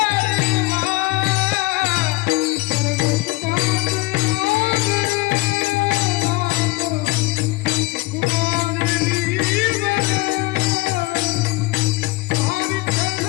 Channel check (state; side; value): quieter; right; 22.2 dB